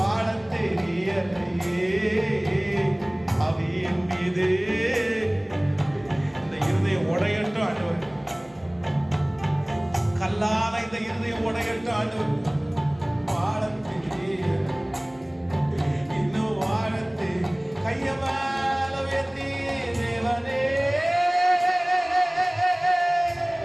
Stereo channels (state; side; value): noise; right; rumble, 29 dB below the sound